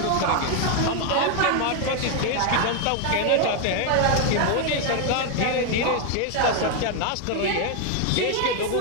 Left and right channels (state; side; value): different; both; correlation 0.01